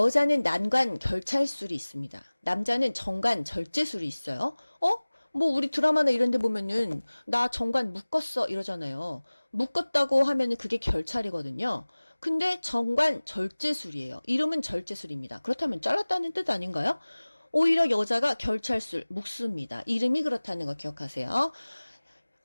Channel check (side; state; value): both; inverted; correlation -1.00